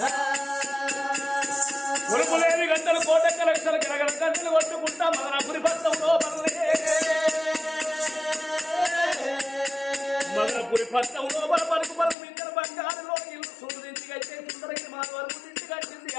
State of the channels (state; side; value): drops out; right; at 12.2 s